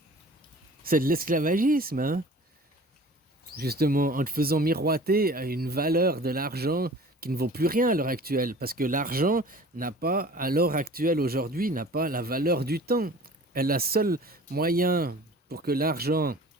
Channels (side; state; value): both; normal; correlation 0.44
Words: C'est de l'esclavagisme, hein. Justement, en te faisant miroiter à une valeur de l'argent qui ne vaut plus rien à l'heure actuelle. Parce que l'argent n'a pas, à l'heure actuelle, aujourd'hui, n'a pas la valeur du temps. Et le seul moyen pour que l'argent